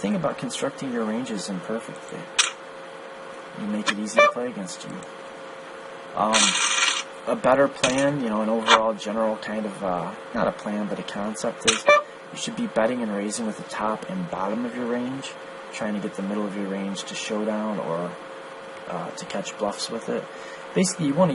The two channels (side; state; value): both; identical; correlation 1.00